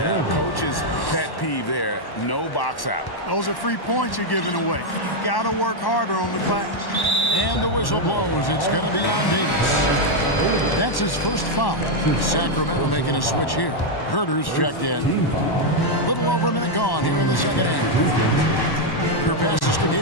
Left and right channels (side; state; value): right; late; 1.1 ms